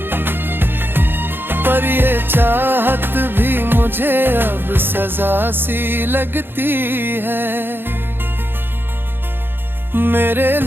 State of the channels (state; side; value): late; left; 0.10 ms